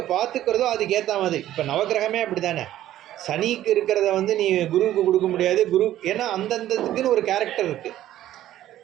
பார்த்துக்கிறதோ அதுக்கு ஏற்ற மாதிரி. இப்போ நவகிரகமே அப்படி தானே, சனிக்கு இருக்கிறத வந்து நீ குருவுக்கு கொடுக்க முடியாது. குரு ஏன்னா அந்தந்ததுக்குன்னு ஒரு கேரக்டர் இருக்குது.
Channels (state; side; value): quieter; left; 13.1 dB